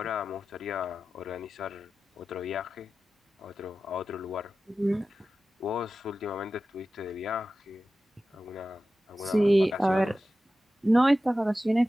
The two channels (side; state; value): both; normal; correlation 0.94